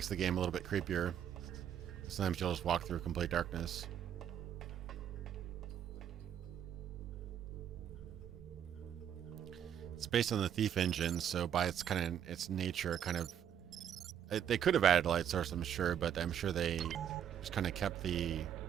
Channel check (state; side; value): quieter; left; 9.5 dB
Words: the game a little bit creepier. Sometimes you'll just walk through complete darkness. It's based on the Thief engine, so by its nature, they could have added a light source, I'm sure, but I'm sure they just kind of kept the